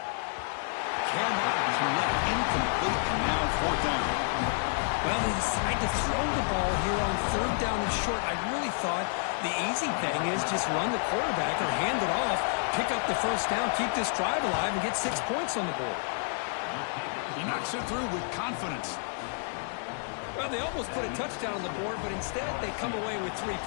Cannot connect, incomplete, and now fourth down. Well, they decide to throw the ball here on third down and short. I really thought the easy thing is just run the quarterback or hand it off, pick up the first down, keep this drive alive, and get 6 points on the board. He knocks it through with confidence. Well, they almost put a touchdown on the board, but instead they come away with 3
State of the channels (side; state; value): right; silent; 58 dB below the other